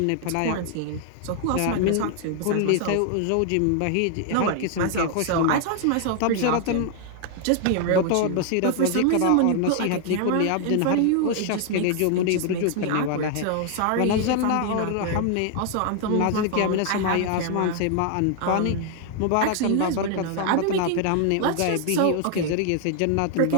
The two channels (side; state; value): both; different; correlation 0.00